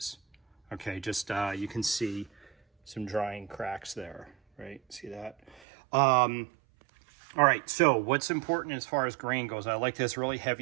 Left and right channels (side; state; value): left; drops out; at 5.6 s